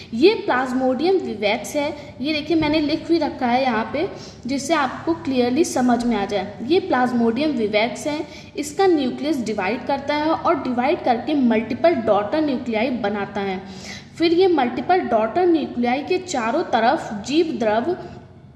ये प्लाज्मोडियम विवेक्स है। ये देखिए मैंने लिख भी रखा है यहाँ पे जिससे आपको क्लियरली समझ में आ जाए। ये प्लाज्मोडियम विवेक्स है। इसका न्यूक्लियस डिवाइड करता है और डिवाइड करके मल्टीपल डॉटर न्यूक्लियाई बनाता है। फिर ये मल्टीपल डॉटर न्यूक्लियाई के चारों तरफ जीव द्रव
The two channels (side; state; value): both; identical; correlation 1.00